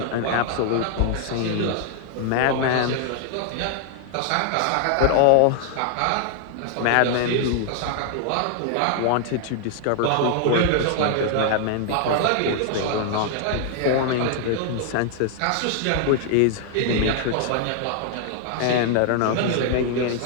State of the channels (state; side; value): different; both; correlation 0.00